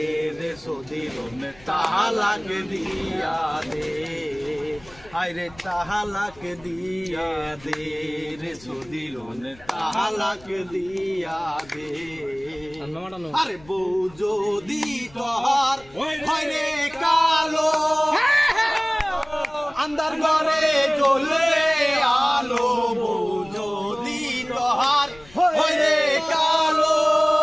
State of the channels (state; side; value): noise; left; rumble, 24 dB below the sound